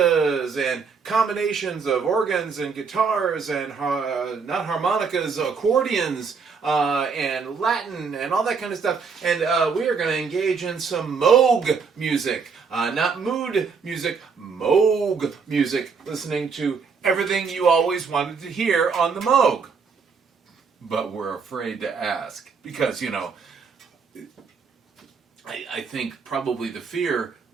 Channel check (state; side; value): quieter; left; 5.4 dB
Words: and combinations of organs and guitars and not harmonicas, accordions and Latin and all that kind of stuff. And we are going to engage in some Moog music, not mood music, Moog music, listening to everything you always wanted to hear on the Moog. But we're afraid to ask because, you know, I think probably the fear